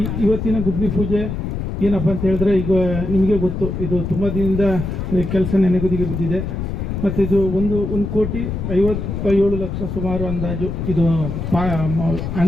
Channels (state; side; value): noise; left; rumble, 4 dB below the sound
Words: ಇವತ್ತಿನ ಗುದ್ಲಿ ಪೂಜೆ ಏನಪ್ಪ ಅಂತ ಹೇಳಿದ್ರೆ, ಈಗ ನಿಮಗೆ ಗೊತ್ತು, ಇದು ತುಂಬ ದಿನದಿಂದ ಕೆಲಸ ನೆನೆಗುದಿಗೆ ಬಿದ್ದಿದೆ. ಮತ್ತು ಇದು 1,57,00,000 ಸುಮಾರು ಅಂದಾಜು. ಇದು